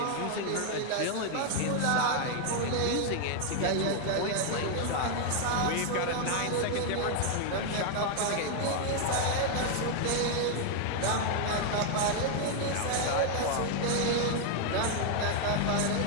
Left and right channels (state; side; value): different; both; correlation 0.00